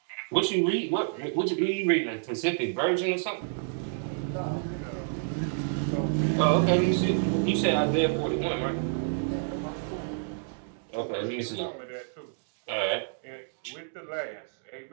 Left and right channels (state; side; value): silent; left; digital silence